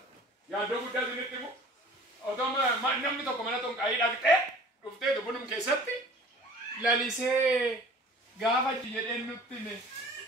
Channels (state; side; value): normal; both; correlation 0.46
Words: yaaddoo guddaa isinitti himu. Otoo namni tokko mana tonqaayii dhaqxee dhufteetu bunum keessatti lalisee gaafa jedheen nutti